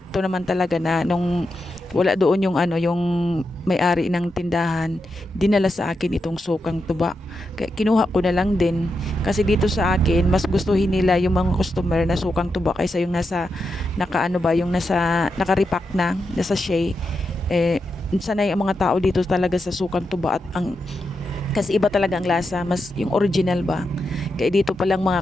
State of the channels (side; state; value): both; normal; correlation 0.86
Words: naman talaga na nung wala doon yung may-ari ng tindahan, dinala sa akin itong sukang tuba. Kaya kinuha ko na lang din. Kasi dito sa akin, mas gustuhin nila yung mga customer na sukang tuba kaysa yung nasa naka-repack na nasa sachet. Sanay ang mga tao dito talaga sa sukang tuba at kasi iba talaga ang lasa, mas yung original ba. Kaya dito pa lang